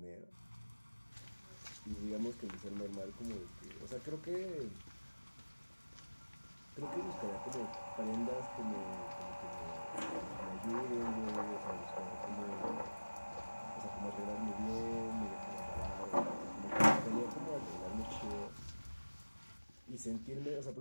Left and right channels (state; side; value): inverted; both; correlation -1.00